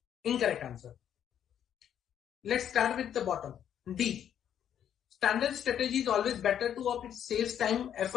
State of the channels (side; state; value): right; quieter; 9.6 dB